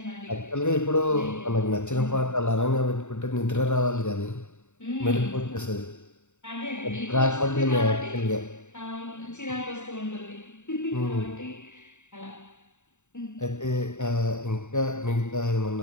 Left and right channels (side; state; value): right; late; 0.84 ms